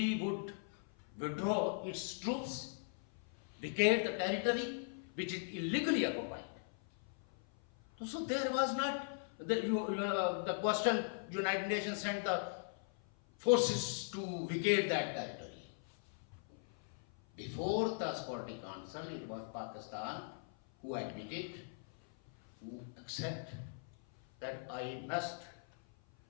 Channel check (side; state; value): right; silent; 52 dB below the other